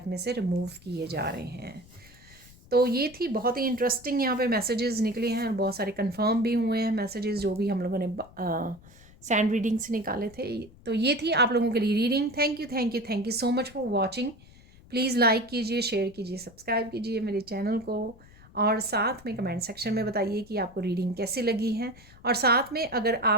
में से रिमूव किए जा रहे हैं। तो ये थी बहुत ही इंटरेस्टिंग यहाँ पे मैसेजेस निकले हैं, और बहुत सारे कंफर्म भी हुए हैं मैसेजेस जो भी हम लोगों ने सैंड रीडिंग से निकाले थे। तो ये थी आप लोगों के लिए reading. Thank you so much for watching. Please like कीजिए, शेयर कीजिए, सब्सक्राइब कीजिए मेरे चैनल को, और साथ में कमेंट सेक्शन में बताइए कि आपको रीडिंग कैसी लगी है। और साथ में अगर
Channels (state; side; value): noise; left; rumble, 23 dB below the sound